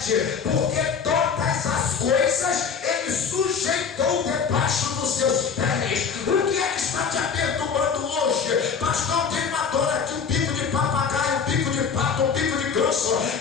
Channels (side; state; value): right; quieter; 6.2 dB